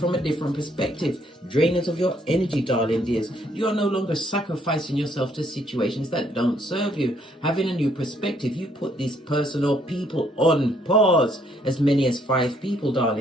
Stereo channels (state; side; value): normal; both; correlation 0.68